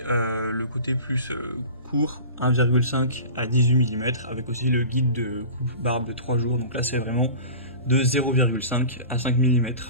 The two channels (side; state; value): both; inverted; correlation -0.37